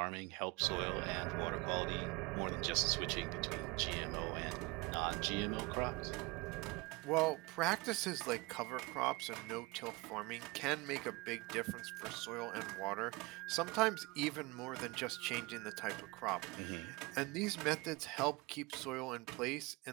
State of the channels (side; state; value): left; quieter; 24.9 dB